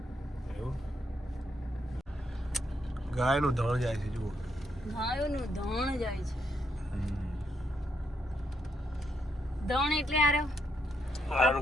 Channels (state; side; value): normal; both; correlation 0.78